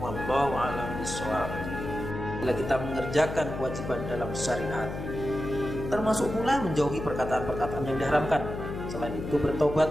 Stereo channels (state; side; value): noise; left; hum, 7 dB below the sound